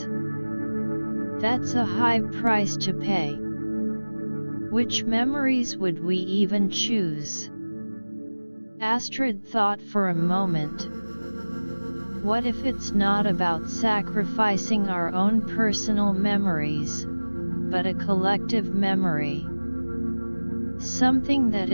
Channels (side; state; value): both; inverted; correlation -1.00